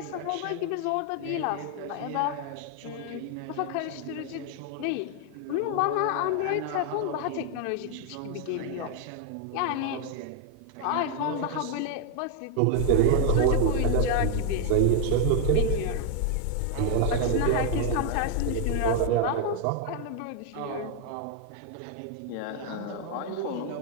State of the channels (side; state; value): both; different; correlation 0.00